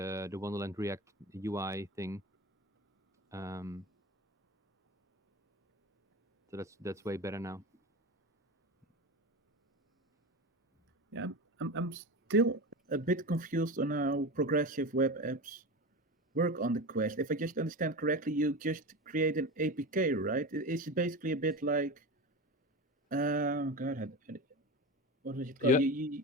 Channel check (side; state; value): both; normal; correlation 0.24